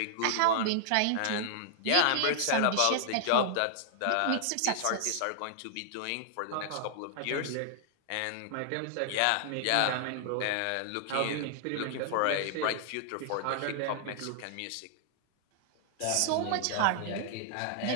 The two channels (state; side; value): different; both; correlation -0.01